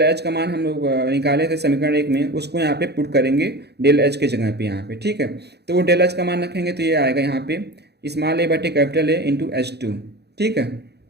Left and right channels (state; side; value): late; left; 0.48 ms